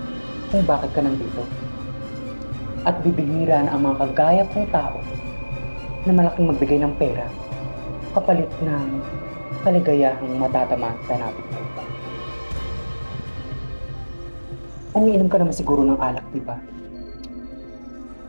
Kung bakit ka nandito. At bibihira na ang mga kagaya kong tao na malaking magbigay ng pera kapalit ng kaligayahang matatamaan sa natin. Umiinom ka naman siguro ng alak, di ba?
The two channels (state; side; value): inverted; both; correlation -1.00